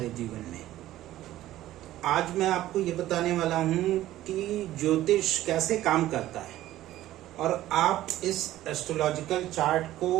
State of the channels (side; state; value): left; quieter; 14.4 dB